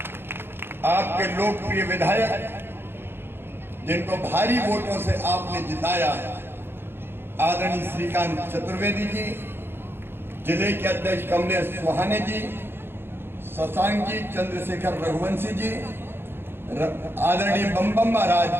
आपके लोकप्रिय विधायक जिनको भारी वोटों से आपने जिताया, आदरणीय श्रीकांत चतुर्वेदी जी, जिले के अध्यक्ष कमलेश सुहाने जी, शशांक जी, चंद्रशेखर रघुवंशी जी, आदरणीय बम बम महाराज,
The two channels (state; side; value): late; left; 0.11 ms